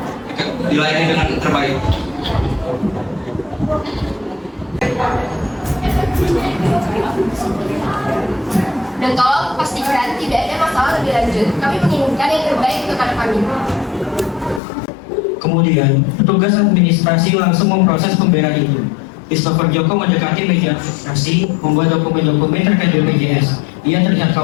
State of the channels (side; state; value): right; drops out; at 14.6 s